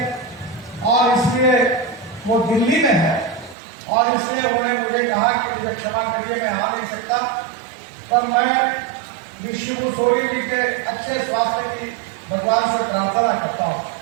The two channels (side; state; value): left; drops out; at 3.6 s